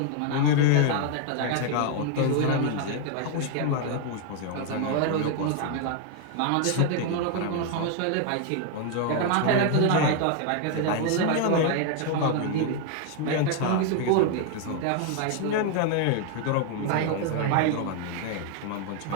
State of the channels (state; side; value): different; both; correlation 0.00